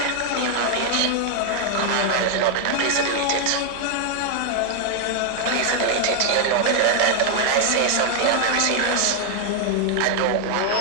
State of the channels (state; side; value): different; both; correlation 0.00